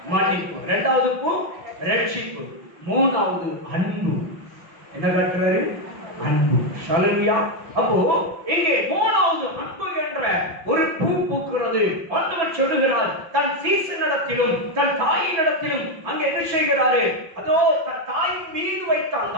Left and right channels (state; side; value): late; left; 5.7 ms